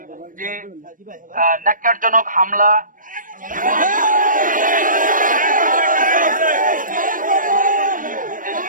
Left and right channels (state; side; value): late; left; 0.39 ms